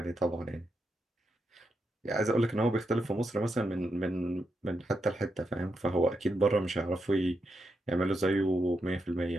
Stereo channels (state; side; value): normal; both; correlation 0.84